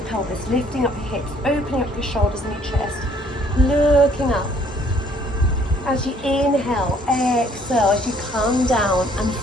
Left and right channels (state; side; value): normal; both; correlation 0.62